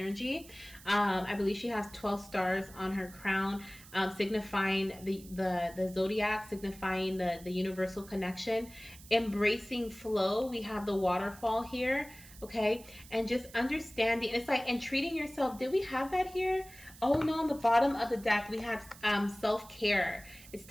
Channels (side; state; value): right; noise; hiss, 20 dB below the sound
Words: I believe she has 12 stars on her crown, signifying the zodiac, signifying the universal connection. Embracing flow. We have the waterfall here. Okay, and just understanding, it's like, and treating yourself. Did we have that here? Oh no, on the bottom of the deck we have self-care. It's